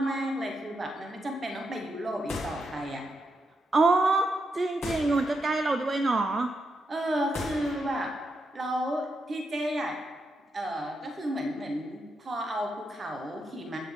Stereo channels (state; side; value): normal; both; correlation 0.83